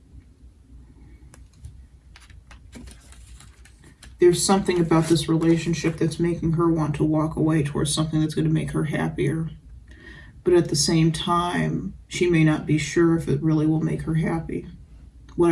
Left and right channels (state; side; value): identical; both; correlation 1.00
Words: There's something about this relationship that's making her want to walk away towards something that's going to make her happier. But at the same time, she may not be sure if it really will make her happy.